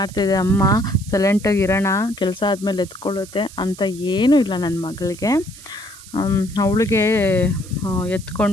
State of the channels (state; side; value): noise; right; hiss, 18 dB below the sound